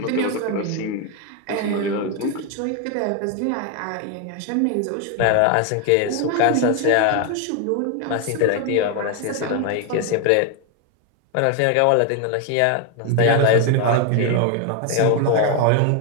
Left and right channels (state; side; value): different; both; correlation 0.01